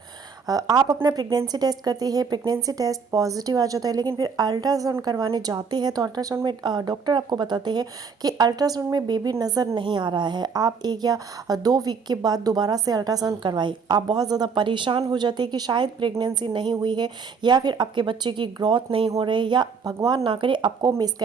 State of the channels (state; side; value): quieter; left; 5.6 dB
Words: आप अपना प्रेगनेंसी टेस्ट करते हैं, प्रेगनेंसी टेस्ट पॉजिटिव आ जाता है, लेकिन फिर अल्ट्रासाउंड करवाने जाते हैं तो अल्ट्रासाउंड में डॉक्टर आपको बताते हैं कि अल्ट्रासाउंड में बेबी नज़र नहीं आ रहा है। आप 1 या 2 वीक के बाद दोबारा से अल्ट्रासाउंड करवाएं। आप बहुत ज़्यादा परेशान हो जाते हैं कि शायद प्रेगनेंसी नहीं हुई है या फिर आपके बच्चे की ग्रोथ नहीं हो रही या भगवान ना करे आपको